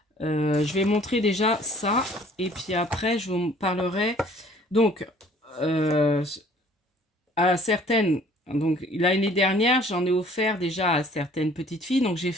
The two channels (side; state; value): both; normal; correlation 0.55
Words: je vais montrer déjà ça. Et puis après, je vous parlerai. Donc, à certaines... Donc l'année dernière, j'en ai offert déjà à certaines petites filles. Donc j'ai